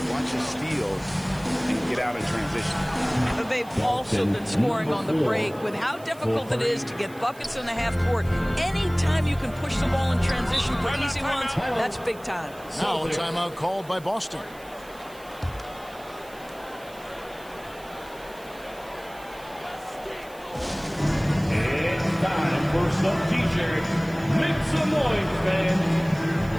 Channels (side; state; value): right; noise; hiss, 23 dB below the sound